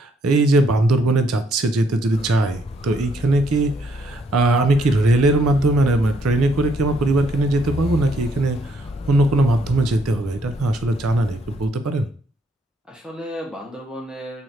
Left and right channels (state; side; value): normal; both; correlation 0.70